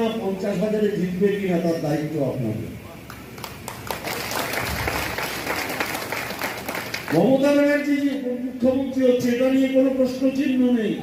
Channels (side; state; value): both; identical; correlation 1.00